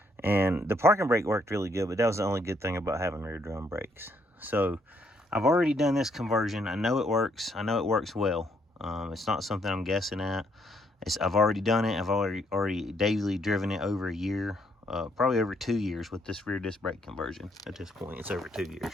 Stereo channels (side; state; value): both; normal; correlation 0.71